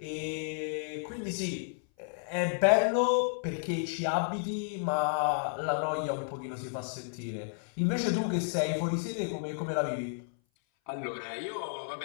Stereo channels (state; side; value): silent; right; 56 dB below the other